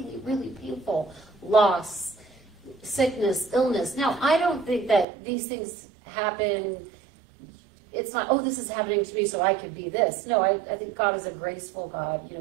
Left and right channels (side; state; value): left; drops out; at 5.1 s